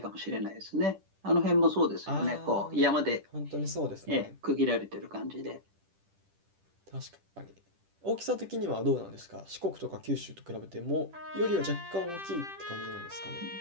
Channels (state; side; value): late; left; 10 ms